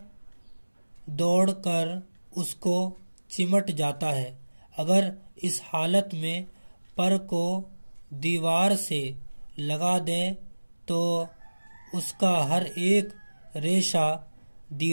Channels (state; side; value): inverted; both; correlation -1.00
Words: دوڑ کر اس کو چمٹ جاتا ہے. اگر اس حالت میں پر کو دیوار سے لگا دیں تو اس کا ہر ایک ریشہ